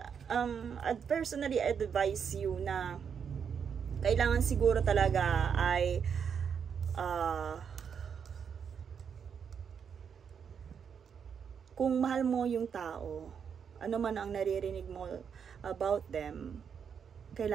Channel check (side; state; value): left; quieter; 7.1 dB